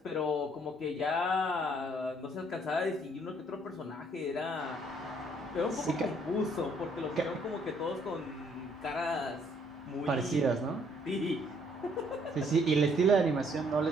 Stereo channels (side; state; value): both; normal; correlation 0.65